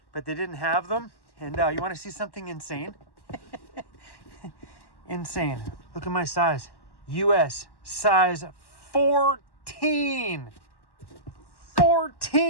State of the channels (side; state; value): right; late; 1.1 ms